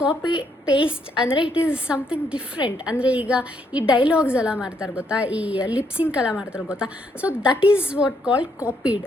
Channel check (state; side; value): normal; both; correlation 0.74